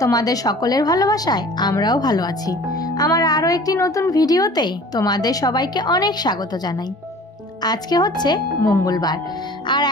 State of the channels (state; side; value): normal; both; correlation 0.46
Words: তোমাদের সকলের ভালোবাসায় আমরাও ভালো আছি। আমার আরও একটি নতুন ভিডিওতে তোমাদের সবাইকে অনেক স্বাগত জানাই। আজকে হচ্ছে মঙ্গলবার আর